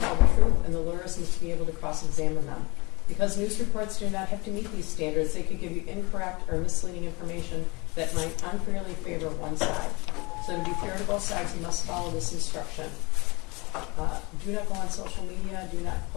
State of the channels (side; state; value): right; quieter; 26.0 dB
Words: the truth, and the lawyers must be able to cross-examine them. Because news reports do not have to meet these standards, they could give you incorrect or misleading information that might unfairly favor one side. So to be fair to both sides, you must follow this instruction. Do not go on social media, do not